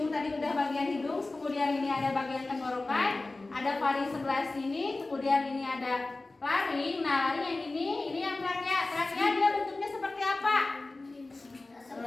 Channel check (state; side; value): quieter; right; 3.2 dB